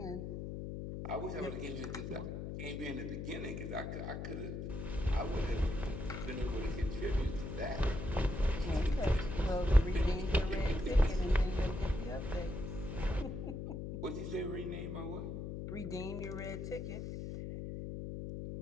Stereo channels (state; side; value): noise; left; hum, 5 dB below the sound